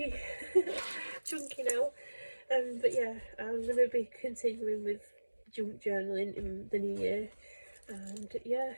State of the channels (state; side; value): inverted; both; correlation -1.00